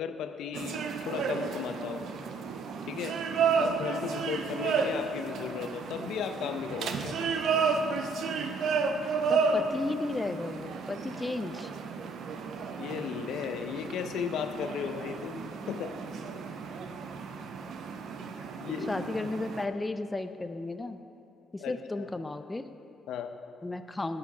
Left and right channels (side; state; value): both; normal; correlation 0.64